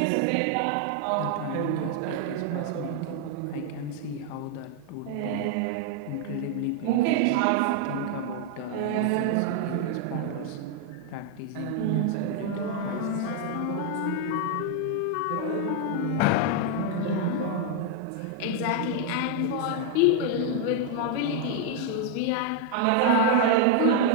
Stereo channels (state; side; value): different; both; correlation 0.00